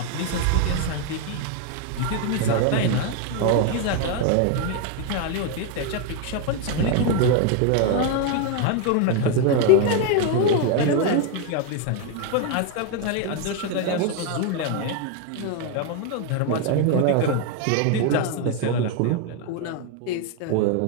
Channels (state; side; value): different; both; correlation 0.01